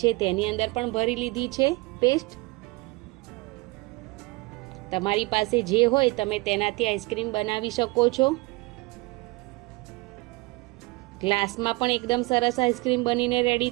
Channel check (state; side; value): quieter; left; 24.7 dB